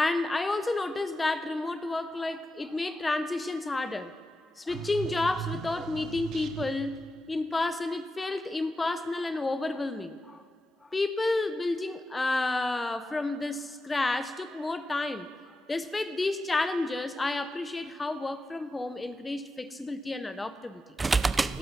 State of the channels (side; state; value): both; normal; correlation 0.90